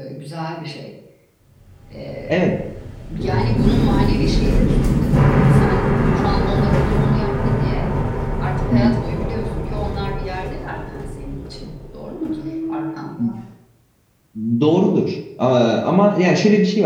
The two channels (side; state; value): both; identical; correlation 1.00